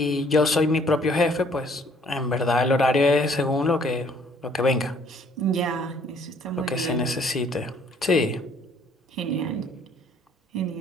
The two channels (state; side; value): normal; both; correlation 0.61